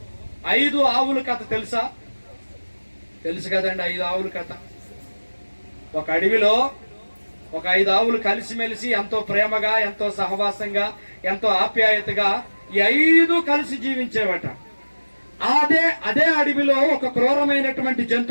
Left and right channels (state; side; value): inverted; both; correlation -1.00